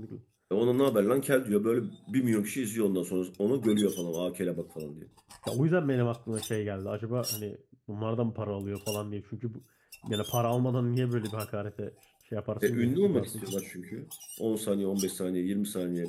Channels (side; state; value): both; identical; correlation 1.00